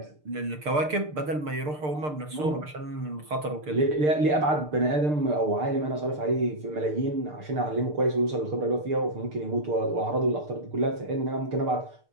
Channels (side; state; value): left; late; 6.7 ms